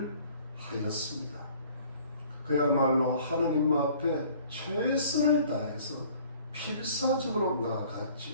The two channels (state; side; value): inverted; both; correlation -0.53